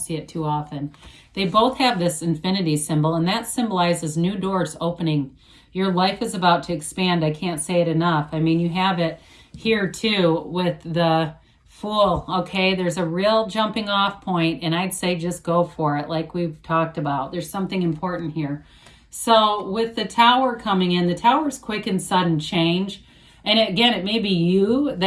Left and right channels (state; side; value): identical; both; correlation 1.00